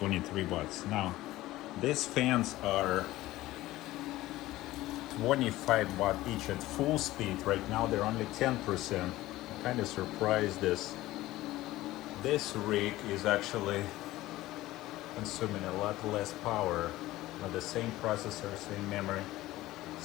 watts. Now, these fans are 25 watt each at full speed. Right now they're only 10%. I'm kind of surprised this rig is actually consuming a lot less power with the same processor, same memory,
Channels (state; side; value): quieter; right; 16.8 dB